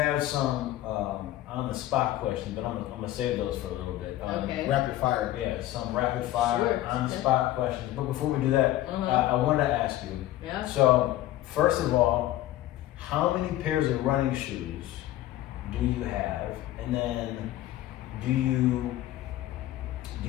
some on the spot questions, but I'm gonna save those for a little bit. Okay. Rapid fire. Yeah, some rapid fire Sure. on the spot questions. But before we do that, I wanted to ask you. Yeah. So first of all, how many pairs of running shoes do you have? And then do you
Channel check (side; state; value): right; quieter; 14.6 dB